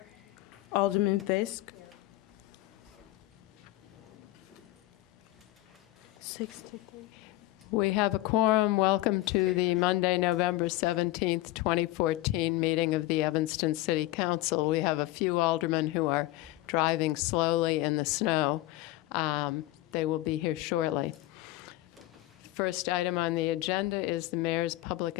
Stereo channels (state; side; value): quieter; right; 17.7 dB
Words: Alderman Fisk. 63. We have a quorum. Welcome to the Monday, November 17th, 2014 meeting of the Evanston City Council. We have a few aldermen who are driving slowly in the snow. They will be here shortly. First item on the agenda is the mayor's public